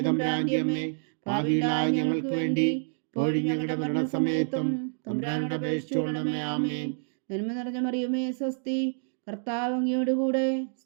തമ്പുരാന്റെ അമ്മേ, പാപികളായ ഞങ്ങൾക്ക് വേണ്ടി ഇപ്പോഴും ഞങ്ങളുടെ മരണസമയത്തും തമ്പുരാനോട് അപേക്ഷിച്ചുകൊള്ളണമേ. ആമേൻ. നന്മ നിറഞ്ഞ മറിയമേ സ്വസ്തി, കർത്താവ് അങ്ങയോട് കൂടെ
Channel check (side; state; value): left; silent; 59 dB below the other